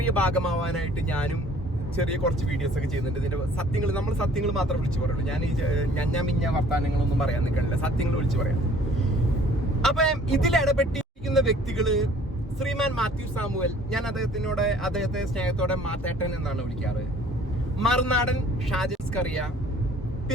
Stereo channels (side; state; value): both; normal; correlation 0.54